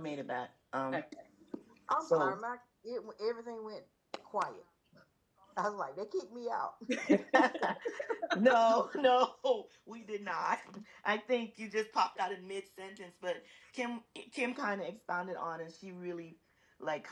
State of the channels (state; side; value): identical; both; correlation 1.00